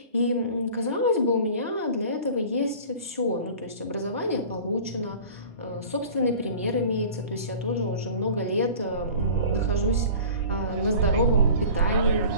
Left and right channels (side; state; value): both; inverted; correlation -0.41